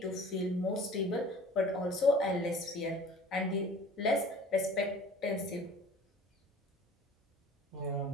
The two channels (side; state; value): both; normal; correlation 0.46